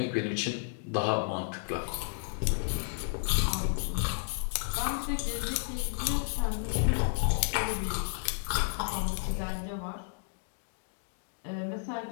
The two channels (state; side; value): silent; right; digital silence